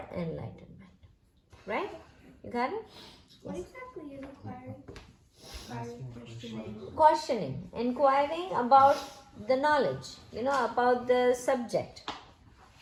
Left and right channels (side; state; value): both; identical; correlation 1.00